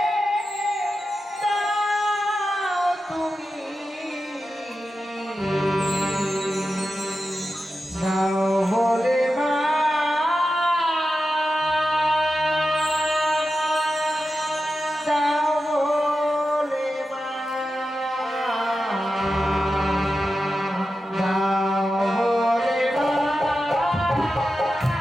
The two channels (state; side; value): normal; both; correlation 0.91